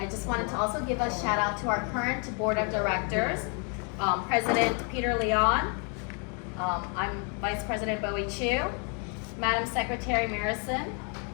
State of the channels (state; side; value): quieter; right; 37.8 dB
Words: just wanted to also give a shout out to our current board of directors, President Peter Leon, I'm Vice President Bowie Chu, Madam Secretary Marison,